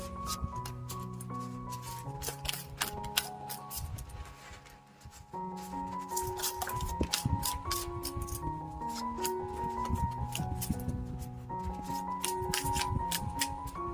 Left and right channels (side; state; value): both; identical; correlation 1.00